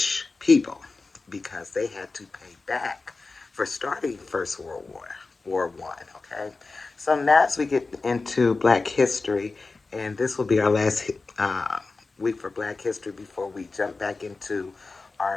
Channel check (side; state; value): right; quieter; 3.8 dB